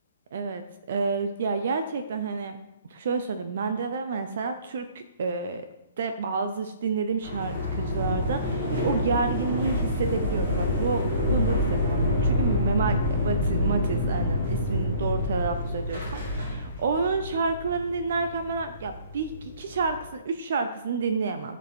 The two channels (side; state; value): both; inverted; correlation -0.55